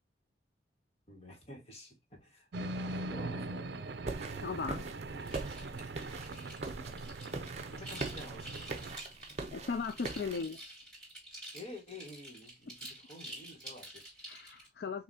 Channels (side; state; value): both; normal; correlation 0.35